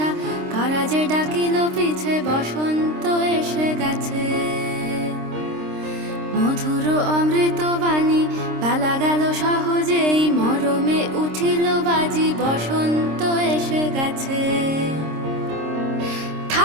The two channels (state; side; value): late; left; 26 ms